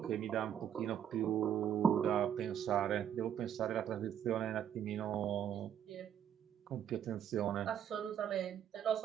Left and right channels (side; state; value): left; quieter; 9.5 dB